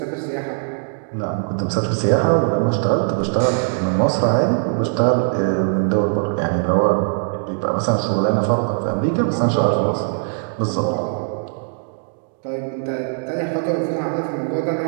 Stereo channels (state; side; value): silent; left; 65 dB below the other